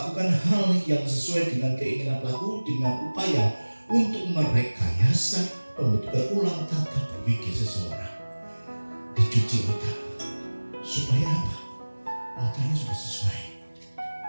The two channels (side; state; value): both; inverted; correlation -1.00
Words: hal yang sesuai dengan keinginan pelaku dengan upaya untuk merekayasa pembentukan ulang tata berpikir seseorang. Dicuci otak supaya apa? Otaknya sudah sesuai,